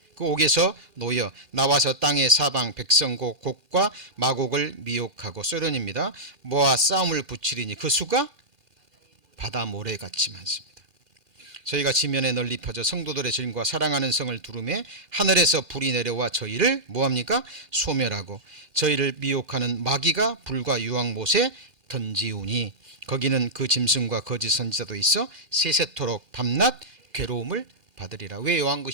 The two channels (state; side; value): late; left; 2.4 ms